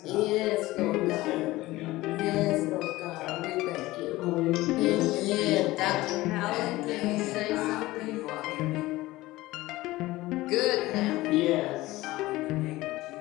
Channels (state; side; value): quieter; right; 18.4 dB